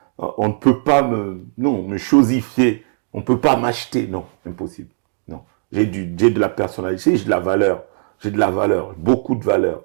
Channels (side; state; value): left; silent; digital silence